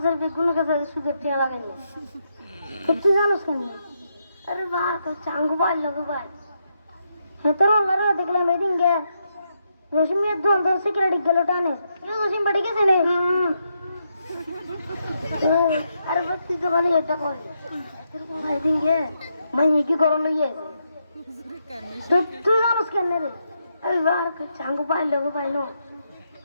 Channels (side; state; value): both; inverted; correlation -0.81